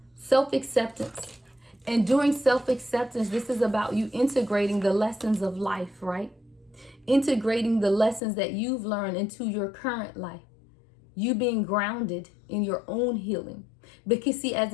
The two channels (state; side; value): drops out; right; at 8.2 s